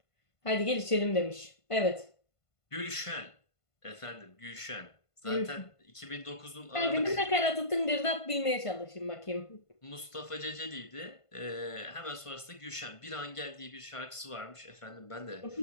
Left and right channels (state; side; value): late; right; 1.5 ms